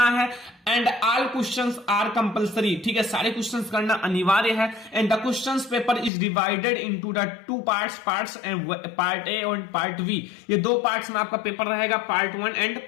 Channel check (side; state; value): right; drops out; at 6.1 s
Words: है and all questions are compulsory. ठीक है, सारे क्वेश्चंस करना अनिवार्य है and the questions paper is divided into the 2 parts and part A और पार्ट बी। ये 2 पार्ट्स में आपका पेपर रहेगा, पार्ट 1 एंड